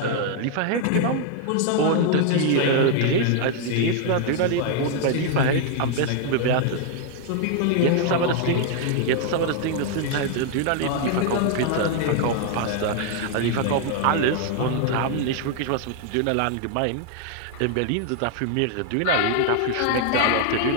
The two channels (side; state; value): both; different; correlation 0.00